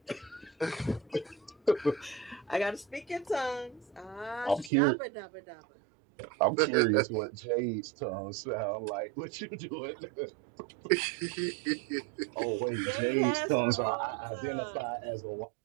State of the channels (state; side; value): drops out; left; at 4.7 s